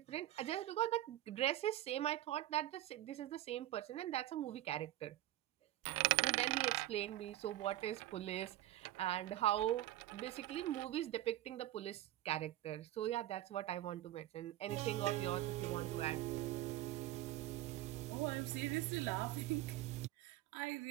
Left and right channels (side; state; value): left; quieter; 14.7 dB